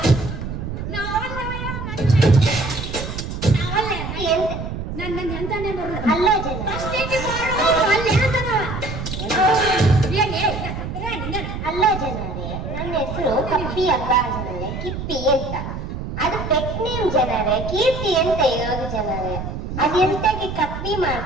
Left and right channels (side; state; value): right; noise; rumble, 6 dB below the sound